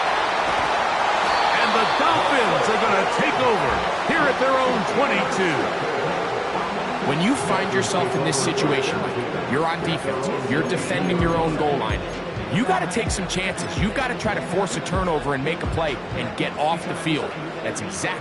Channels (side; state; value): both; identical; correlation 1.00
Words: And the Dolphins are going to take over here at their own 22. When you find yourself in this situation, you're on defense, you're defending your own goal line, you got to take some chances. You got to try to force a turnover and make a play and get off the field. That's